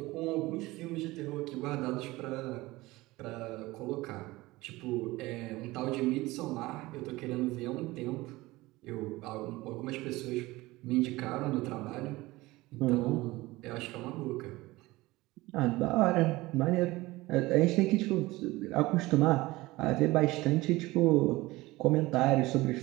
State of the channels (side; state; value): left; quieter; 19.9 dB